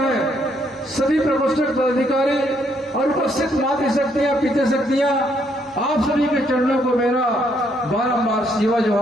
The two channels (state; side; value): normal; both; correlation 0.71